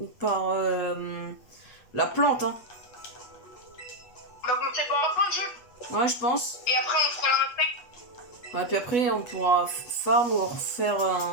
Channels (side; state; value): right; late; 8.3 ms